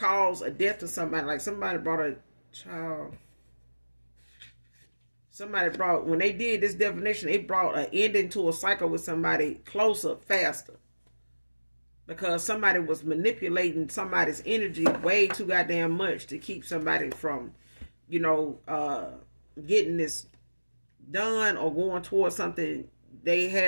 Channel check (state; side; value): inverted; both; correlation -1.00